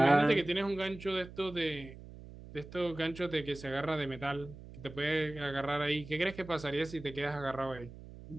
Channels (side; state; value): right; noise; hum, 15 dB below the sound